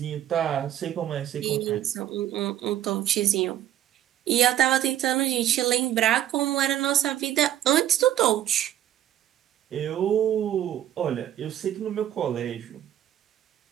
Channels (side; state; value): left; quieter; 12.0 dB